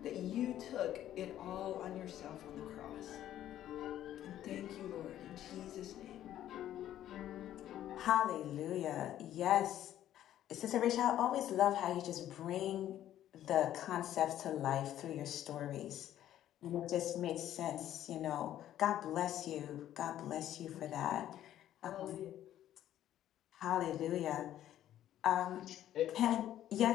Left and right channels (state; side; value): quieter; right; 12.1 dB